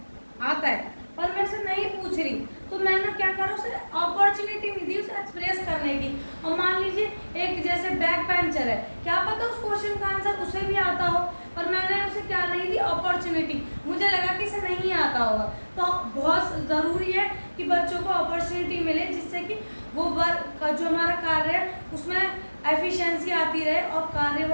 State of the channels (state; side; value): inverted; both; correlation -1.00